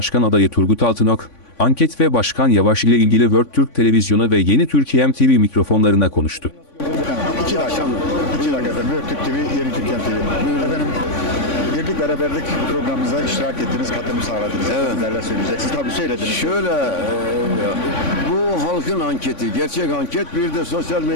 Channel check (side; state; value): right; late; 3.5 ms